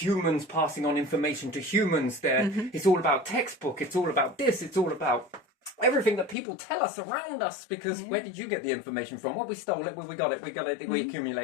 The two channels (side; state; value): right; drops out; at 6.4 s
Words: passing on information to humans. It's all about textbook. It's all about this. It's all about everything that people tell us around us. Because where did you get the information from? Well, we stole it. We got it. We